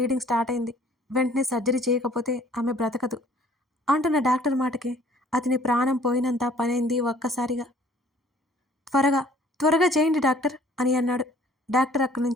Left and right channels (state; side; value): normal; both; correlation 0.56